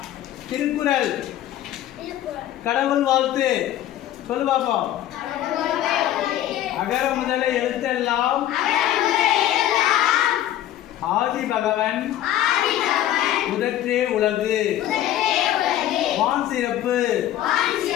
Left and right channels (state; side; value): quieter; right; 12.6 dB